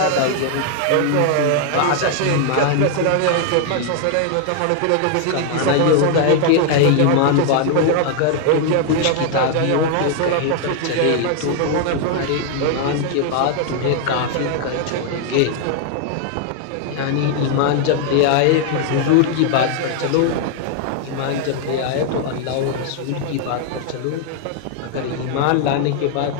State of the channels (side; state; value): both; different; correlation 0.00